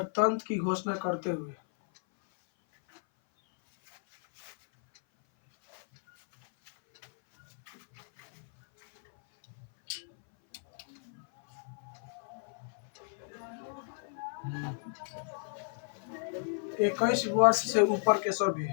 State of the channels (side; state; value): right; silent; 56 dB below the other